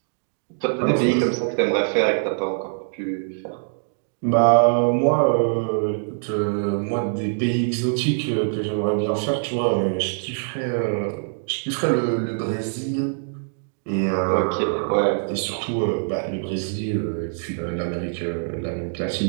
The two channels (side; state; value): left; silent; digital silence